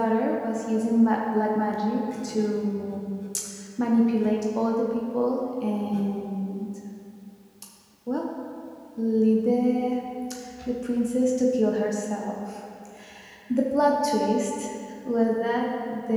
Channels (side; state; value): both; identical; correlation 1.00